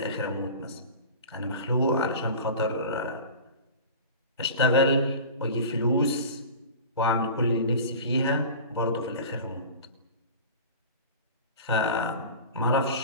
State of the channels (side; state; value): both; inverted; correlation -0.36